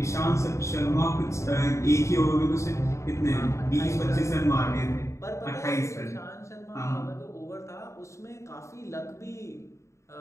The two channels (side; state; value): right; late; 0.14 ms